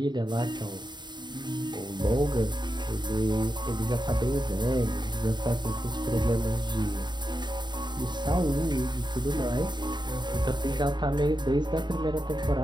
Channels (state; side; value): late; left; 0.21 ms